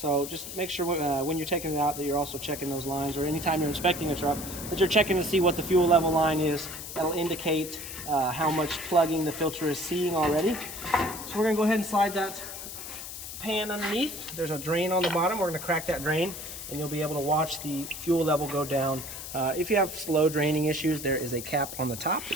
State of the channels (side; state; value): left; noise; hiss, 9 dB below the sound